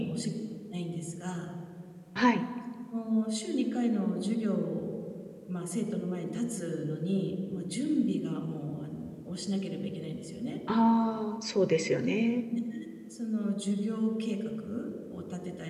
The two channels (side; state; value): both; identical; correlation 1.00